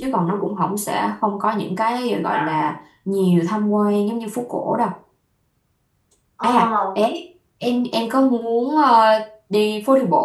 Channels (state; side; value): identical; both; correlation 1.00